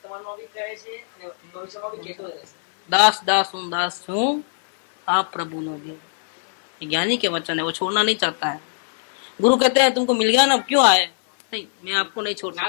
दास दास हूँ आप प्रभु नो देव। ज्ञानी के वचन है, वो छोड़ना नहीं चाहता है। गुरु कहते हैं तुमको मिल गया ना, क्यों आए? नहीं, मैं आपको नहीं छोड़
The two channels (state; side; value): silent; right; digital silence